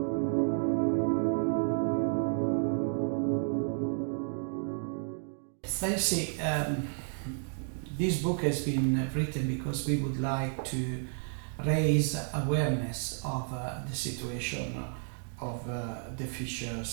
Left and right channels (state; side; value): silent; left; 57 dB below the other